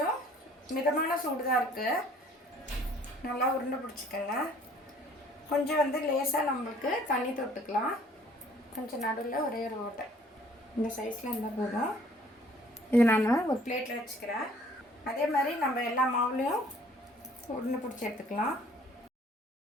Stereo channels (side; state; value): both; normal; correlation 0.57